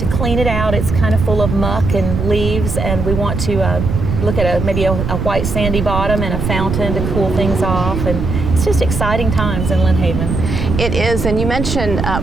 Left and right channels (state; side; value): noise; right; rumble, 3 dB below the sound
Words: clean it out, it's kind of full of muck and leaves, and we want to look at maybe a white sandy bottom and a fountain to cool things off. And it's just exciting times in Lynn Haven. It is, and you mentioned,